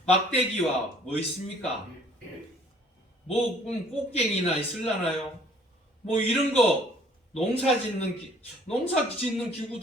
막대기와 뭐 있습니까? 뭐 꽃갱이나 있을라나요? 뭐 이런 거 농사 짓는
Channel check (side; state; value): both; normal; correlation 0.57